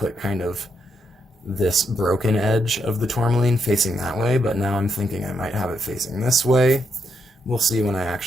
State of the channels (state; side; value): normal; both; correlation 0.79